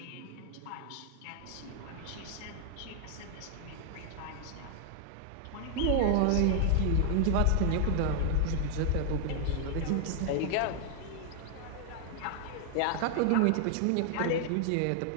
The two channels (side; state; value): both; different; correlation 0.00